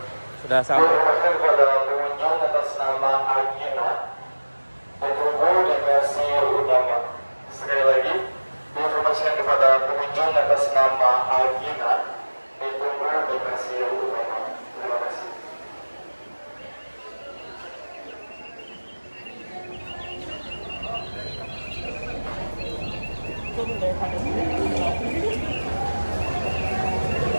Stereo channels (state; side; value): inverted; both; correlation -1.00